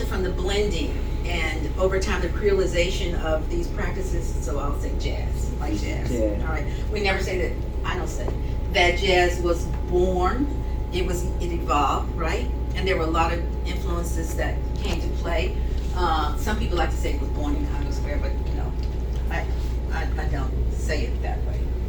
from the blending and over time the creolization of these practices? So I'll say jazz, like jazz. Yeah. All right. We never say that. I don't say that jazz was born. It evolved, right? And there were a lot of influences that came to play. Some people like to say it was born in Congo Square, but you know, I don't say it that way.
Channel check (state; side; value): identical; both; correlation 1.00